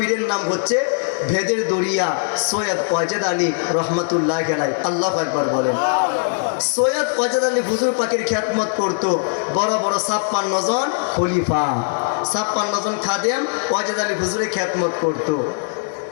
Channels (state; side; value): silent; right; digital silence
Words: নাম হচ্ছে ভেদের দরিয়া সৈয়দ ওয়াজেদ আলী রহমতুল্লাহ আলাইহি। আল্লাহু আকবার বলেন। সৈয়দ ওয়াজেদ আলী হুজুর পাকের খিদমত করত বড় বড় 56 জন খলিফা, 56 জন খাদেম ওয়াজেদ আলী হুজুরের খিদমত করত।